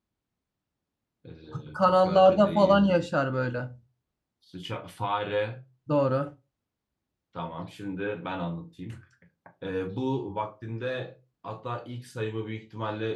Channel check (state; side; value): identical; both; correlation 1.00